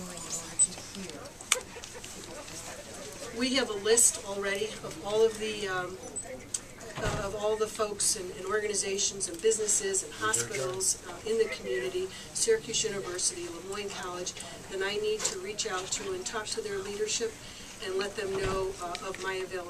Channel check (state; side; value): identical; both; correlation 1.00